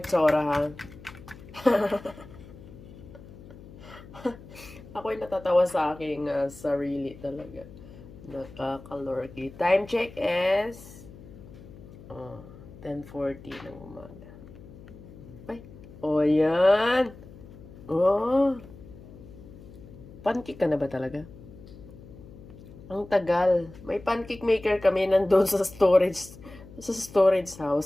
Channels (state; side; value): noise; left; hum, 18 dB below the sound